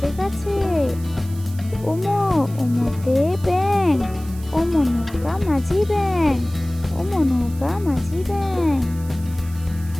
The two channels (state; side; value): noise; right; hiss, 20 dB below the sound